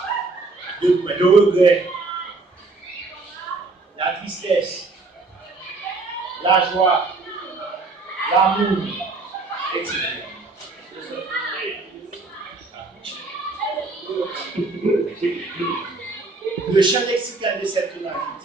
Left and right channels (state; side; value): quieter; left; 3.6 dB